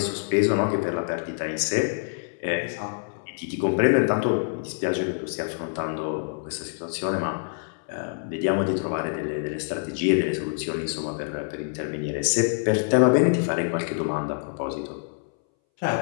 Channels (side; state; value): right; silent; 61 dB below the other